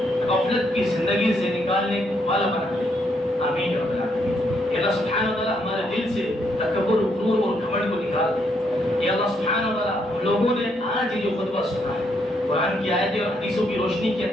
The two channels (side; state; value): both; normal; correlation 0.74